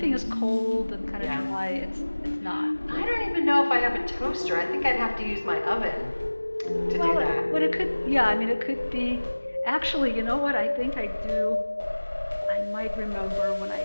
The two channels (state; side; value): inverted; both; correlation -1.00